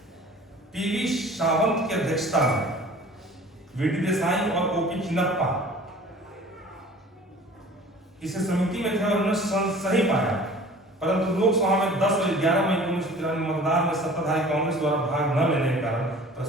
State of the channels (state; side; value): normal; both; correlation 0.46